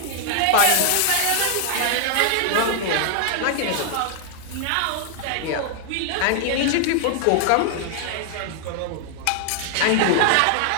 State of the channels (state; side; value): different; both; correlation 0.00